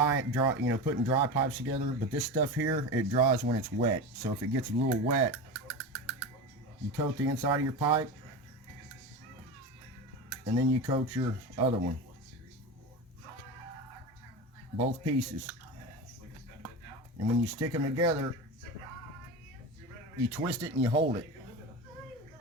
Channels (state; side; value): normal; both; correlation 0.25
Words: you know, putting dry pipes together. But this stuff here, it dries when it's wet. So if it gets a little wet, you coat the inside of your pipe, and then you coat your other one. Both pieces. And when you stick them together, you twist it and you hold it.